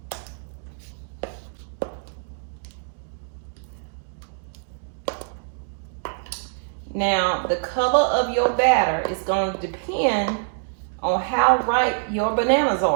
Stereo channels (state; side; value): silent; left; digital silence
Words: Now, the color of your batter is going to depend on how ripe your bananas